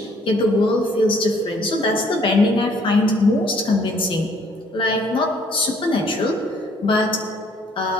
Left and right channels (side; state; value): both; normal; correlation 0.62